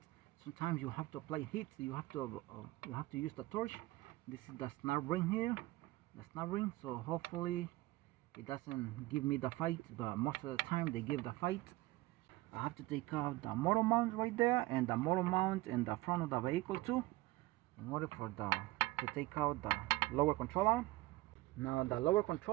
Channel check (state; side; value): quieter; left; 19.2 dB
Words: Sometimes you have to apply heat, you have to use the torch. This is the snap ring here, the snap ring, so hopefully it doesn't give me the fight, but most of the time they give the fight. I have to take out the motor mount right there, and the motor mount in the front of the vehicle too, in order for to take out the lower control arm. Now the lower